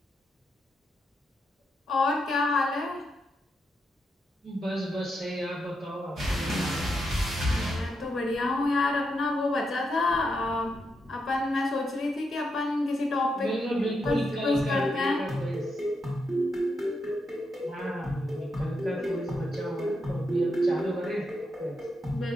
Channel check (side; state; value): both; normal; correlation 0.82